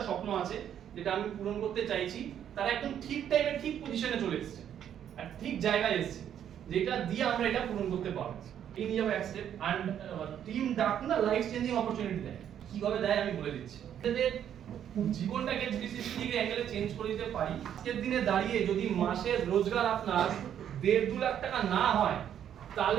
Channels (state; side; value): quieter; left; 9.7 dB